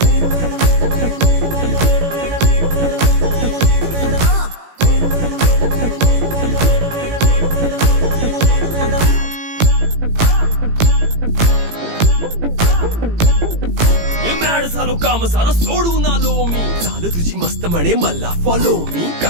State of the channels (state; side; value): late; left; 18 ms